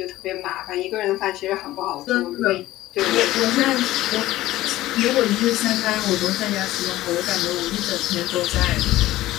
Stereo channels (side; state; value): right; quieter; 15.9 dB